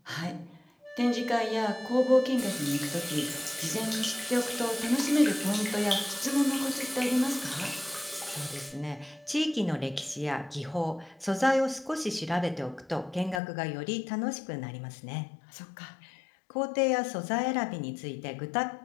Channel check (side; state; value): right; drops out; at 13.4 s